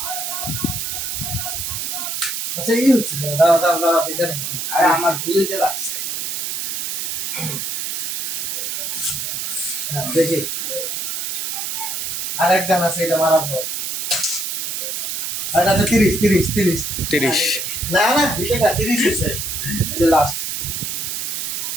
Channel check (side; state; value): right; noise; hiss, 2 dB below the sound